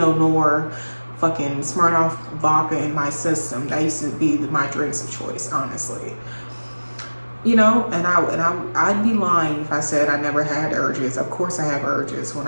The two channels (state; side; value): inverted; both; correlation -1.00